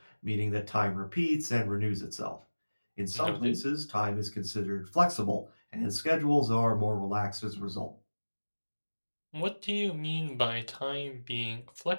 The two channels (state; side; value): inverted; both; correlation -1.00